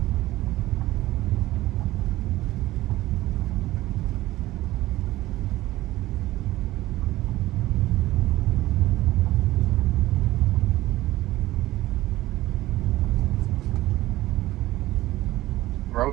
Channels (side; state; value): left; quieter; 16.7 dB